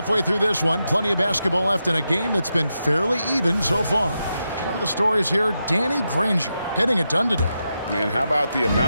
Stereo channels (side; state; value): both; inverted; correlation -0.87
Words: through this one. Plenty of basketball left in a game that's been fairly even so far. One of the stories here, Danny Granger getting it done today. And how about the